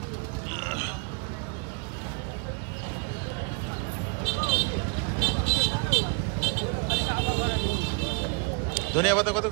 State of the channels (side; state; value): left; quieter; 35.0 dB